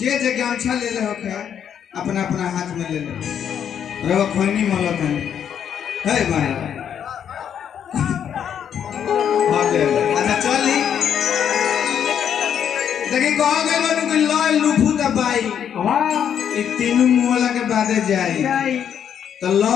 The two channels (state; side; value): quieter; right; 8.7 dB